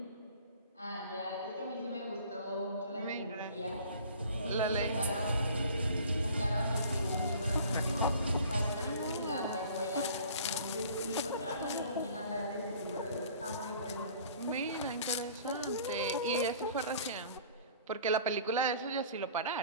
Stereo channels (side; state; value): both; inverted; correlation -0.48